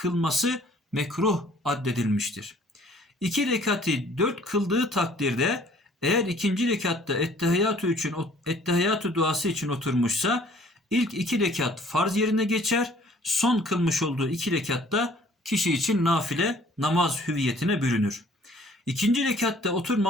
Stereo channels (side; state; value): both; normal; correlation 0.56